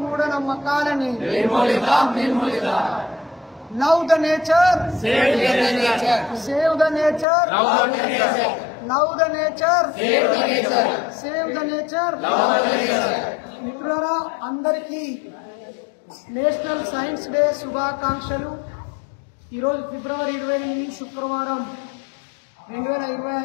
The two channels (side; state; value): right; drops out; at 7.2 s